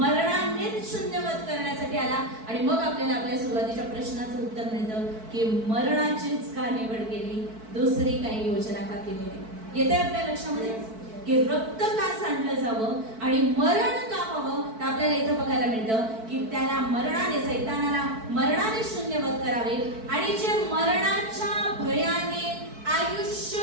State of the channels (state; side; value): late; left; 4.6 ms